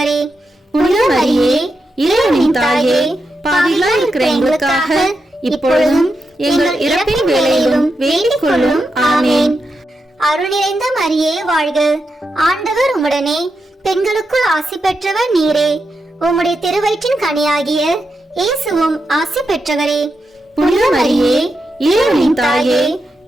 புனித மரியே, இறைவனின் தாயே, பாவிகளாய் இருக்கிற எங்களுக்காக இப்பொழுதும் எங்கள் இறப்பின் வேளையிலும் வேண்டிக் கொள்ளும். ஆமேன். அருள் நிறைந்த மரியே வாழ்க, ஆண்டவர் உம்முடனே, பெண்களுக்குள் ஆசி பெற்றவர் நீரே. உம்முடைய திருவயிற்றின் கனியாகிய இயேசுவும் ஆசி பெற்றவரே. புனித மரியே, இறைவனின் தாயே,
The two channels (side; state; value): both; normal; correlation 0.86